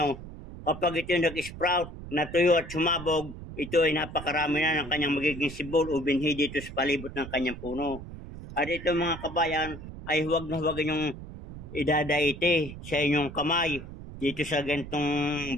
kapag ito nag-sprout, natuyo at sumabog, ito ay napakarami na ng kanyang magiging sibol o binhi dito sa palibot ng kanyang puno. At ito mga kabayan, ay huwag na huwag yung idadaite sa inyong kamay dito sa gantong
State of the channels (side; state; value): right; noise; rumble, 12 dB below the sound